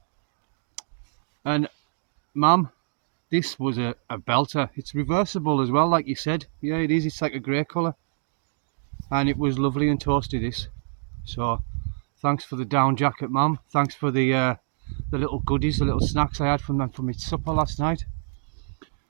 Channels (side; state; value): left; silent; digital silence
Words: And Mum, this was a belter. It's reversible as well, like you said. Yeah, it is, it's like a grey colour. And it was lovely and toasty, this. So thanks for the down jacket, Mum. Thanks for the the little goodies, the little snacks I had from them for my supper last night.